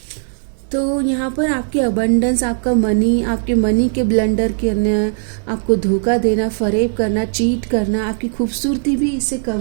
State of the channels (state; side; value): silent; left; digital silence